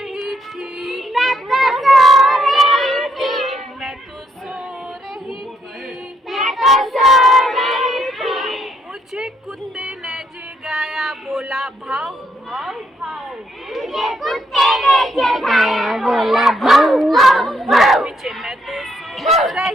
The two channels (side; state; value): both; normal; correlation 0.74